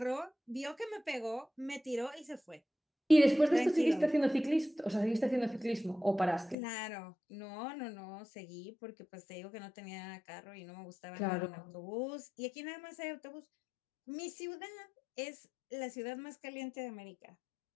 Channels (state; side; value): drops out; right; at 6.6 s